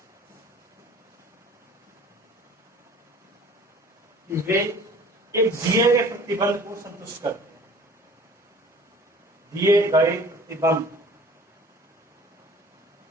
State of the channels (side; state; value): both; normal; correlation 0.47